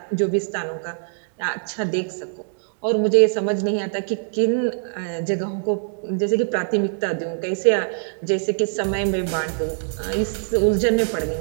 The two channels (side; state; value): left; silent; digital silence